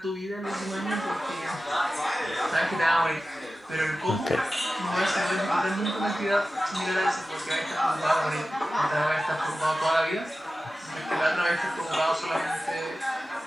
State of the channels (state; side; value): normal; both; correlation 0.95